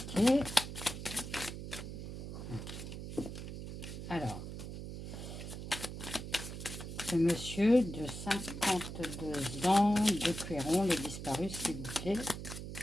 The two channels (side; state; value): right; noise; hum, 8 dB below the sound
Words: Ok. Alors, ce monsieur de 52 ans de Couëron, le disparu, s'il vous plaît.